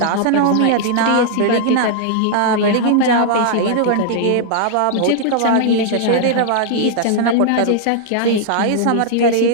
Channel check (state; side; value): different; both; correlation -0.01